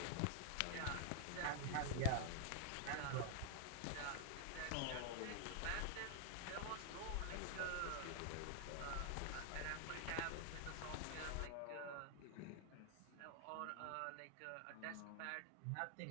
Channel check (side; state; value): both; different; correlation 0.00